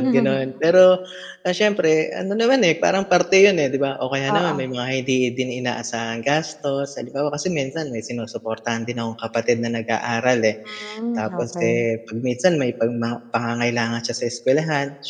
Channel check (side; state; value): both; identical; correlation 1.00